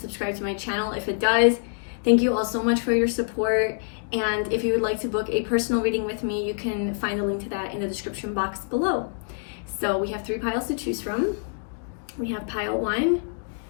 to my channel if it does. Thank you all so much for your support. And if you would like to book a personal reading with me, you can find the link to that in the description box below. So we have 3 piles to choose from. We have pile 1,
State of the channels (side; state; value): right; silent; digital silence